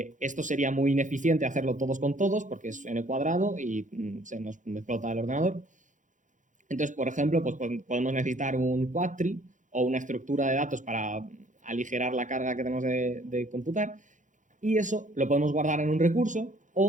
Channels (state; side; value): late; left; 0.37 ms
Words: sería muy ineficiente hacerlo todos con todos porque es n cuadrado y se nos explota el ordenador. Entonces, por ejemplo, pues podemos necesitar un quadtree o una estructura de datos para aligerar la carga que tenemos de computar, y eso lo podemos guardar en un recurso,